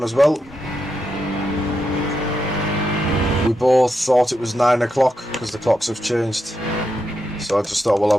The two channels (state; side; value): normal; both; correlation 0.85